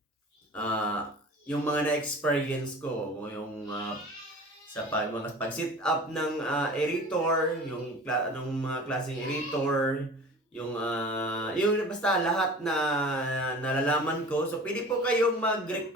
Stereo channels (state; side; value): normal; both; correlation 0.40